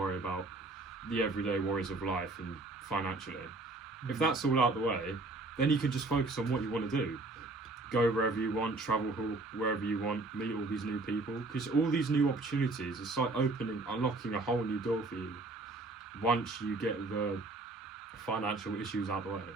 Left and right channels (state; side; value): quieter; left; 3.1 dB